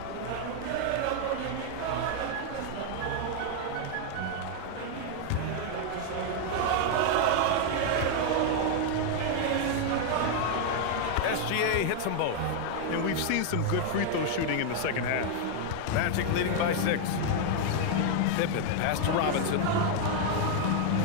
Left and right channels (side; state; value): both; different; correlation 0.00